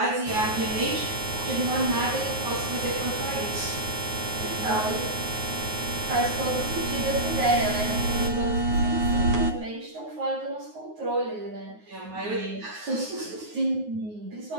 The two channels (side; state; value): left; late; 9.5 ms